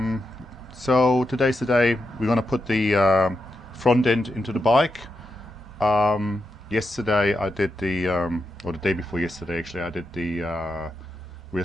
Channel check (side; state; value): both; normal; correlation 0.86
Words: So today's the day we're going to put the front end into the bike. Yesterday I did or the day before yesterday actually, I did the rear